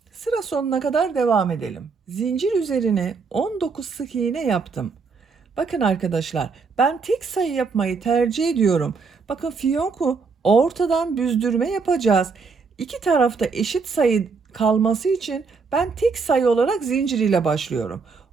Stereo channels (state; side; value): quieter; left; 4.9 dB